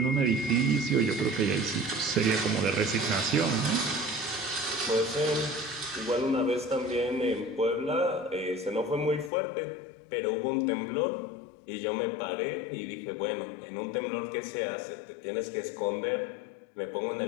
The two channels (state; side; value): drops out; right; at 9.3 s